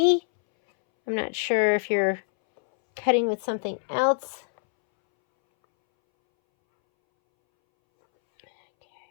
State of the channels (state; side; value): silent; right; 62 dB below the other